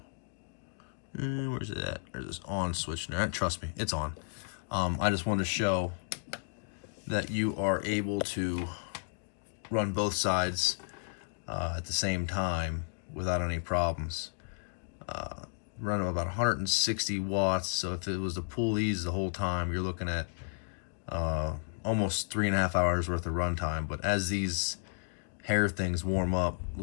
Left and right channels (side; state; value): right; silent; 56 dB below the other